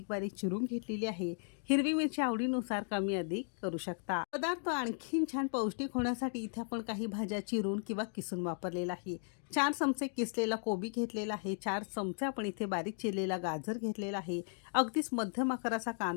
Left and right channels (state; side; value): silent; right; 54 dB below the other